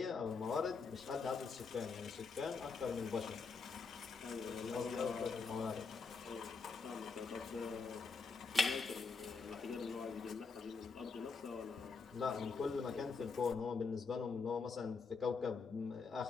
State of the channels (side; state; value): right; quieter; 4.8 dB